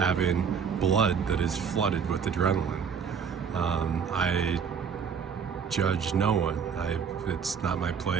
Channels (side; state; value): left; quieter; 6.8 dB